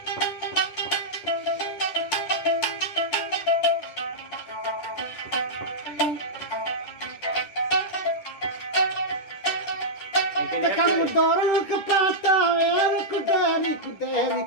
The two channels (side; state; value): right; late; 10 ms